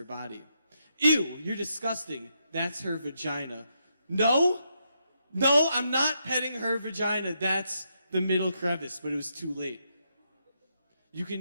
body. Ew, you're disgusting. That's her vagina. No, I'm not petting her vagina. That's the middle crevice, but it was too late. You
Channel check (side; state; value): both; inverted; correlation -0.80